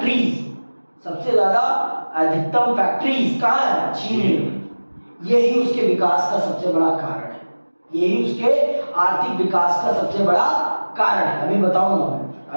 फैक्ट्रीज कहाँ है? चीन में। यही उसके विकास का सबसे बड़ा कारण है, यही उसके आर्थिक विकास का सबसे बड़ा कारण है। अभी बताऊंगा मैं,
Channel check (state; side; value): inverted; both; correlation -1.00